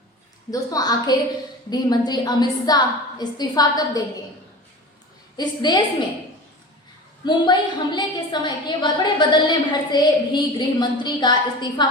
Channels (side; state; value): both; normal; correlation 0.34